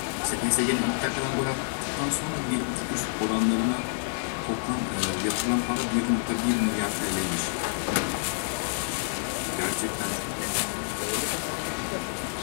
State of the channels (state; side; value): silent; right; digital silence